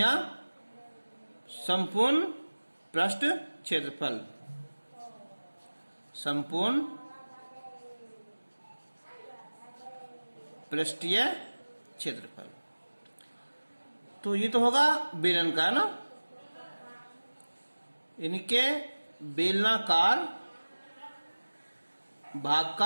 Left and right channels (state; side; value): inverted; both; correlation -1.00